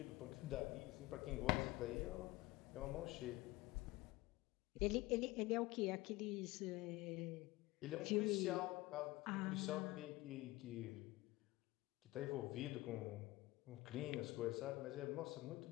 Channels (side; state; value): right; quieter; 19.5 dB